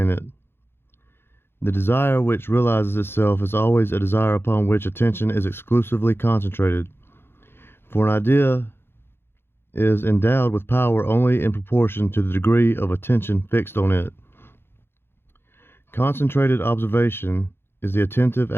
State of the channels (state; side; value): late; right; 0.11 ms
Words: it. The desire which realizes itself is always a desire upon which attention is exclusively concentrated. For an idea is endowed with power only in proportion to the degree of attention fixed on it. Concentrated observation is the attentive